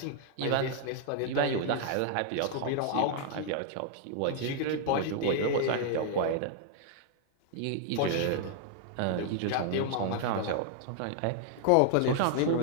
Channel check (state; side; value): different; both; correlation 0.00